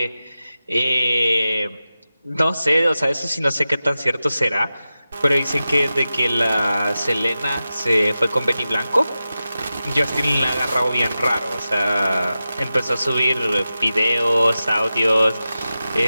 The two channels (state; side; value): inverted; both; correlation -0.93